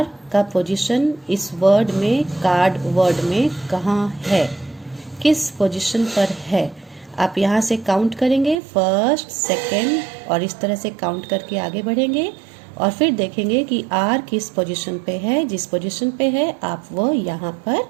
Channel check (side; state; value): left; drops out; at 8.6 s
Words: का position इस word में, card word में कहाँ है, किस position पर है? आप यहाँ से काउंट करेंगे, फर्स्ट, सेकंड, और इस तरह से काउंट करके आगे बढ़ेंगे और फिर देखेंगे कि R किस पोजीशन पे है। जिस पोजीशन पे है आप वो यहाँ पर